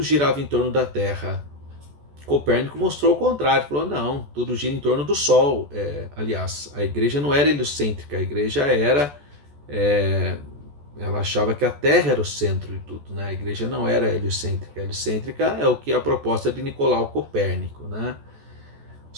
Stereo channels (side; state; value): left; late; 14 ms